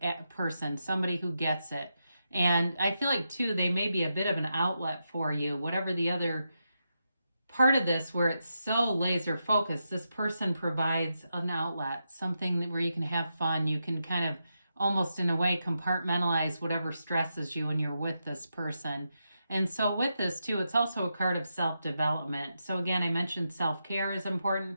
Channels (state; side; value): inverted; both; correlation -0.86